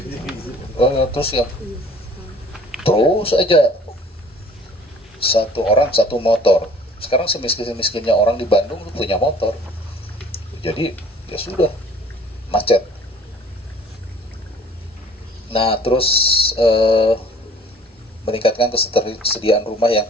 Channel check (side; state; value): both; normal; correlation 0.51